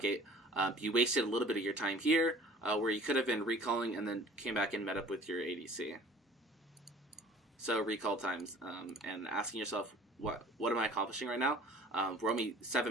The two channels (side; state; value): both; normal; correlation 0.48